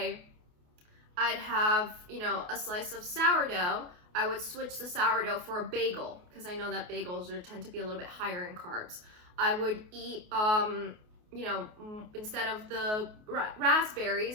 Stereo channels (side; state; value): left; late; 28 ms